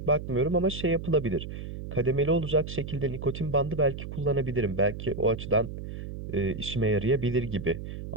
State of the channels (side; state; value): right; noise; hum, 8 dB below the sound